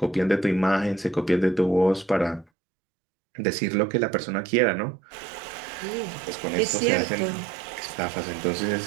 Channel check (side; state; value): left; drops out; at 2.5 s